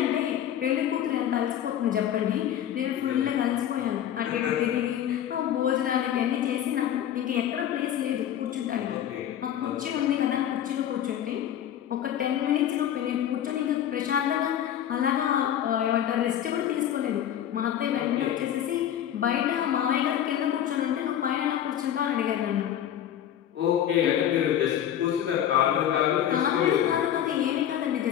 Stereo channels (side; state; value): right; quieter; 10.6 dB